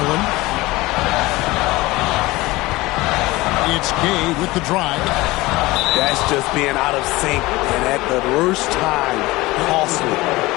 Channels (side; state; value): right; quieter; 20.3 dB